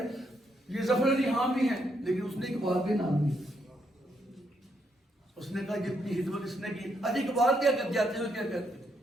یہ ظفر علی خان بھی ہیں، لیکن اس نے اقبال کے نام نہیں. اس نے کہا جتنی خدمت اس نے کی. اجی اقبال کیا کر جاتے ہیں، کیا کہتے ہیں؟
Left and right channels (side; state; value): both; normal; correlation 0.76